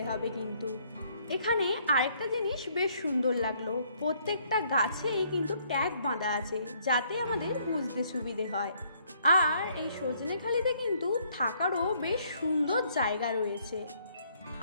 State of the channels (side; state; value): both; inverted; correlation -0.66